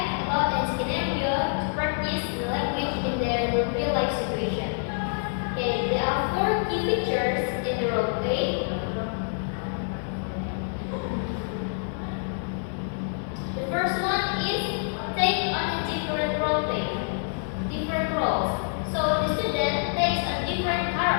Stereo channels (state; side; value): silent; right; digital silence